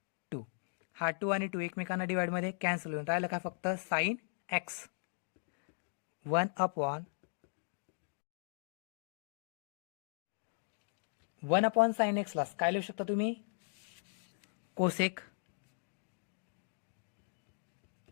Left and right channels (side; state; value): right; silent; digital silence